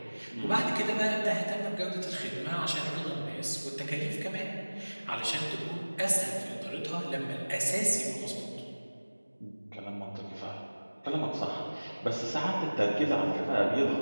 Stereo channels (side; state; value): both; inverted; correlation -1.00